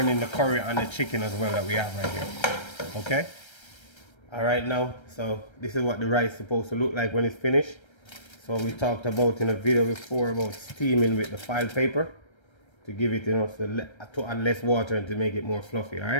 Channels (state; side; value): late; right; 1.3 ms